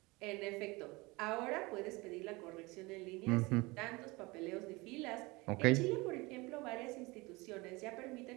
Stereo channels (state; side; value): quieter; left; 23.9 dB